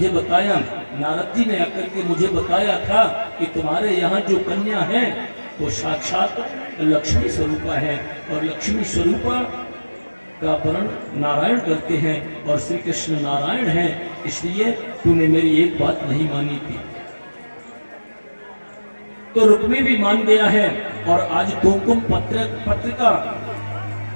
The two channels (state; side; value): inverted; both; correlation -1.00